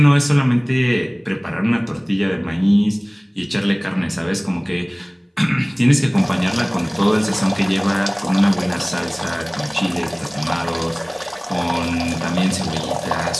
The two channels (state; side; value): identical; both; correlation 1.00